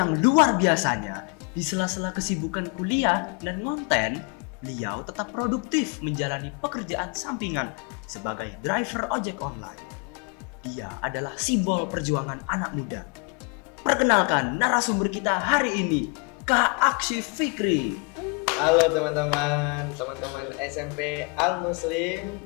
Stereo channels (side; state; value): right; quieter; 33.5 dB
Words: luar biasanya, di sela-sela kesibukan kuliah dan konten, beliau tetap produktif menjalani pekerjaan sampingan sebagai driver ojek online. Dia adalah simbol perjuangan anak muda. Perkenalkan narasumber kita hari ini, Kak Akshif Fikri. Halo teman-teman SMP Al Muslim.